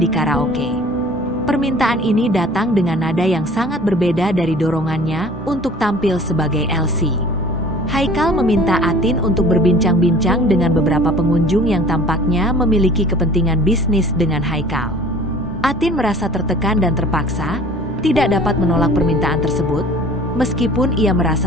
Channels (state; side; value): normal; both; correlation 0.48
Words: karaoke. Permintaan ini datang dengan nada yang sangat berbeda dari dorongannya untuk tampil sebagai Elsie. Haikal meminta Atin untuk berbincang-bincang dengan beberapa pengunjung yang tampaknya memiliki kepentingan bisnis dengan Haikal. Atin merasa tertekan dan terpaksa, tidak dapat menolak permintaan tersebut, meskipun ia